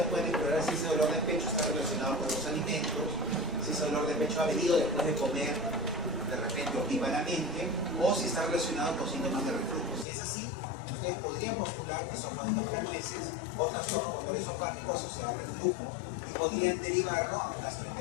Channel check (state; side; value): drops out; right; at 10.1 s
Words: pueden explorar si ese dolor de pecho está relacionado con los alimentos, si ese dolor de pecho ha venido después de comer de repente opíparamente, o si está relacionado con síntomas de reflujo. Si es así, ustedes podrían postular esófago de cascanueces o trastorno motor esofágico asociado al reflujo y podrían derivarlo a un